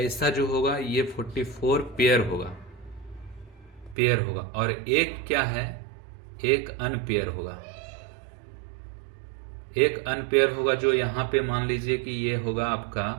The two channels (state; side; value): drops out; left; at 4.0 s